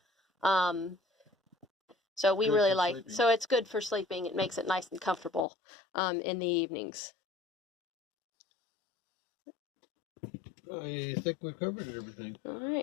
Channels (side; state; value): right; drops out; at 5.5 s